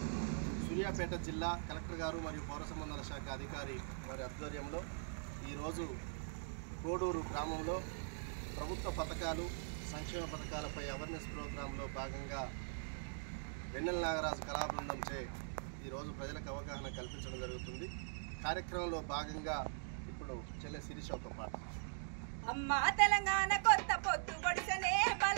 సూర్యాపేట జిల్లా కలెక్టర్ గారు మరియు పౌర సంబంధాల శాఖ అధికారి వారి ఆధ్వర్యంలో ఈరోజు కోడూరు గ్రామంలో ప్రభుత్వ పథకాలు సంక్షేమ పథకాలపై అవేర్నెస్ ప్రోగ్రాంలో భాగంగా వెన్నెల నాగరాజు కళాబృందం చే ఈరోజు ప్రజలకు అవగాహన కల్పించడం జరుగుతుంది. కార్యక్రమంలో భాగంగా ఇప్పుడు చెల్లె శిరీష ఒక పాట. అమ్మ తెలంగాణ కొత్త పొద్దు పొడిసనే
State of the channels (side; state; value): left; silent; digital silence